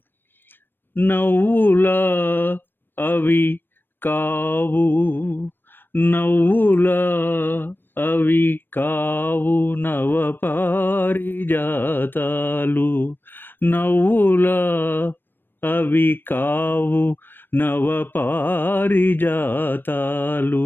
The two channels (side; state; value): right; late; 0.096 ms